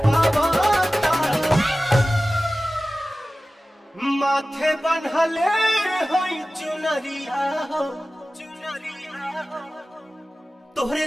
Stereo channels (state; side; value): normal; both; correlation 0.96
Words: पावाता। माथे बन्हले होई चुनरिया हो चुनरिया हो, तोहरे